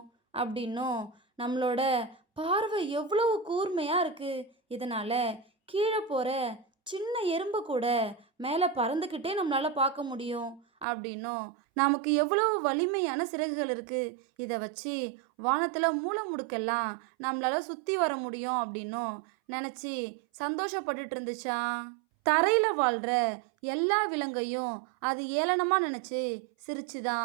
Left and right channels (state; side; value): drops out; left; at 10.9 s